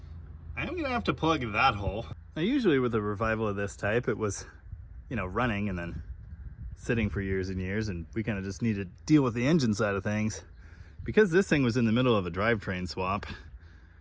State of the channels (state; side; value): identical; both; correlation 1.00